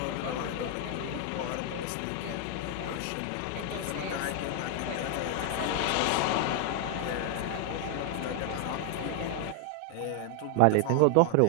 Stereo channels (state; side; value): different; both; correlation 0.01